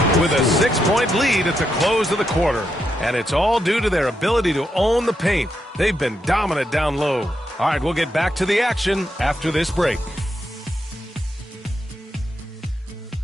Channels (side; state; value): both; normal; correlation 0.82